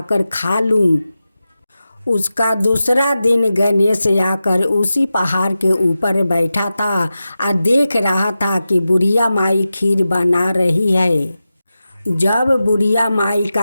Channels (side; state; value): both; inverted; correlation -0.93